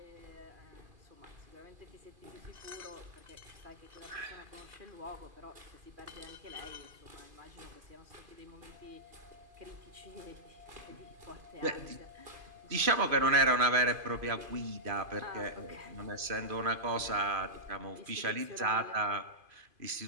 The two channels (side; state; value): left; late; 2.5 ms